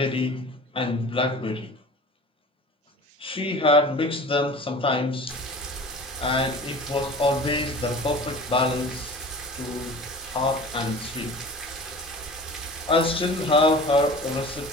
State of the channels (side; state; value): both; normal; correlation 0.39